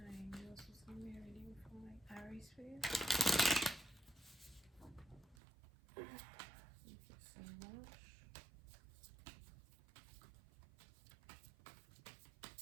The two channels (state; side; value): drops out; left; at 5.4 s